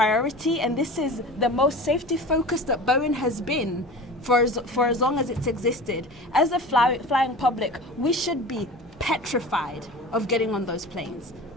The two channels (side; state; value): both; normal; correlation 0.35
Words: and this is the most safety focused that Boeing has been for as long as it's existed. As a flying public, we should be petrified of getting on those planes.